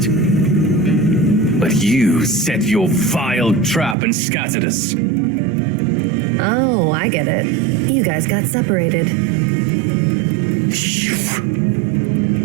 But you set your vile trap and scattered us. Oh, I get it. You guys got separated.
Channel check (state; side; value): drops out; left; at 4.0 s